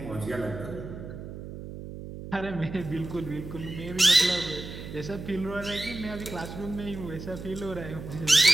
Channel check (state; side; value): noise; right; hum, 10 dB below the sound